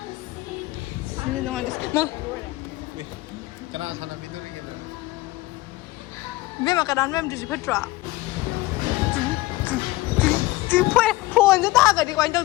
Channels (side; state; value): right; quieter; 19.0 dB